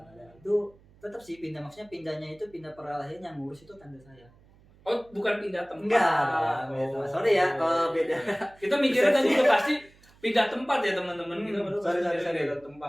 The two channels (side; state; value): right; noise; hum, 28 dB below the sound